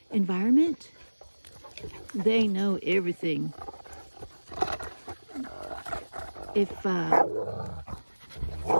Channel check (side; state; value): both; inverted; correlation -1.00